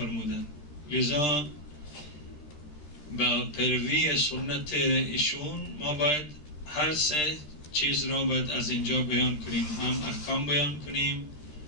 لذا با پیروی سنت ایشون ما باید هر سه چیز را باید از اینجا بیان کنیم، هم احکام بیان کنیم،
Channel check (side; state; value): right; late; 13 ms